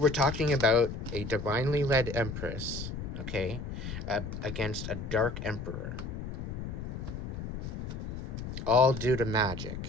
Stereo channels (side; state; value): left; noise; rumble, 6 dB below the sound